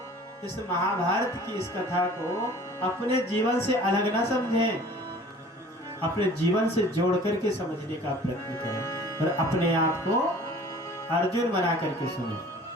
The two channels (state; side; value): normal; both; correlation 0.47